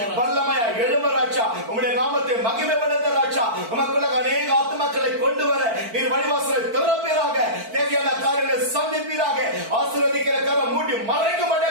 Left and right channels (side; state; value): left; late; 4.5 ms